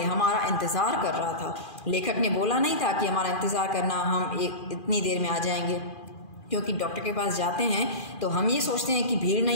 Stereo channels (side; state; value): right; late; 2.4 ms